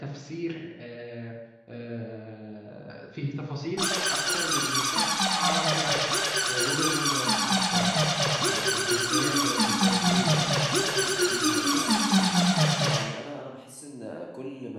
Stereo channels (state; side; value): identical; both; correlation 1.00